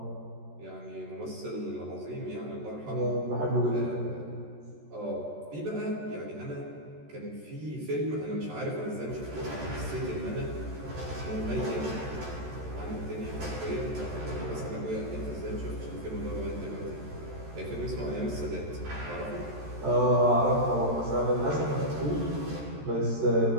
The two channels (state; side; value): late; left; 13 ms